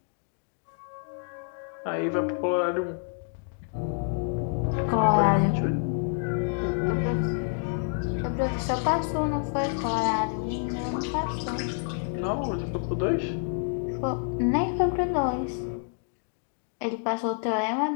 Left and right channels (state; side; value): silent; right; 59 dB below the other